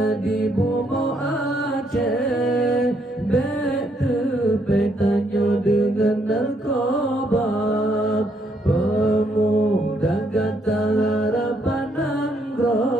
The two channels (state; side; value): normal; both; correlation 0.73